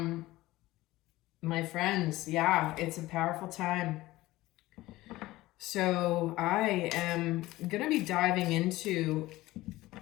my friends, yeah, it's a powerful time. So I am going to be diving into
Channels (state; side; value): quieter; right; 17.9 dB